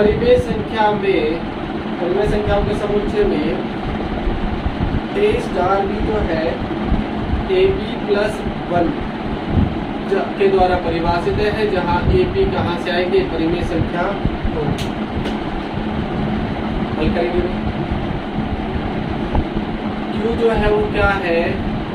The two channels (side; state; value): both; identical; correlation 1.00